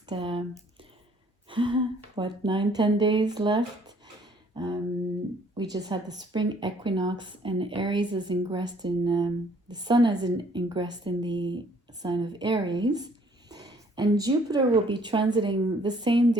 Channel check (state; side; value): normal; both; correlation 0.61